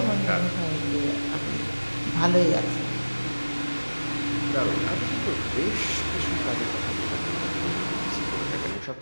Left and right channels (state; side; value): inverted; both; correlation -1.00